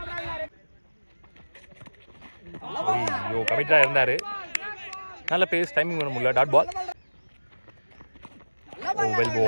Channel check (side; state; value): both; inverted; correlation -1.00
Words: ஐயோ கமிட்டடாக இருந்தார். நல்ல பேஸ், டைமிங் பண்ண முடியல. Dot ball. Oh well